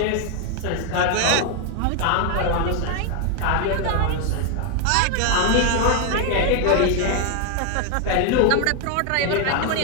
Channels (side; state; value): both; different; correlation 0.00